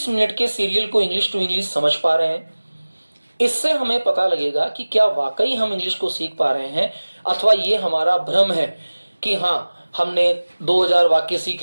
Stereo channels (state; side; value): inverted; both; correlation -1.00